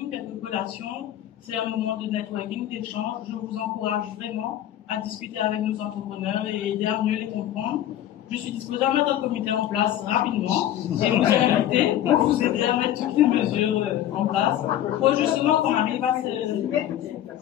quelques collations. C'est un moment de networking, d'échange. Je vous encourage vraiment à discuter avec nos entrepreneurs et aider à mieux les comprendre. Je suis disposée à mettre un comité en place rapidement et vous inviter pour vous aider à mettre toutes les mesures en place pour justement qu'on arrive à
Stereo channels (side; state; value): right; quieter; 12.0 dB